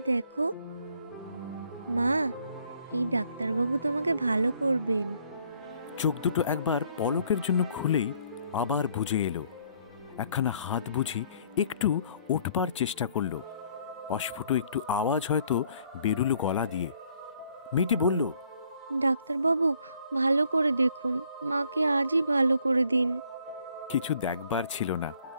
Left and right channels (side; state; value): both; inverted; correlation -0.64